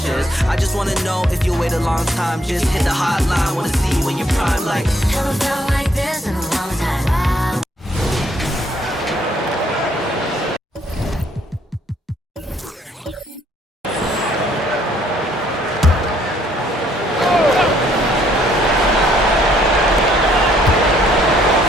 I just wanna know if you wait a long time. Just hit the hotline, wanna see you when you're prime. Like, never felt like this in a long time.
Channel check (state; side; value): normal; both; correlation 0.67